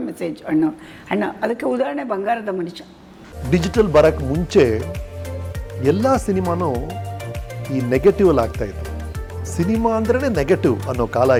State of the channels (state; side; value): identical; both; correlation 1.00